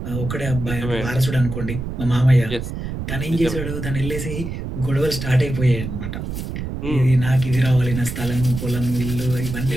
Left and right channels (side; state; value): right; noise; rumble, 6 dB below the sound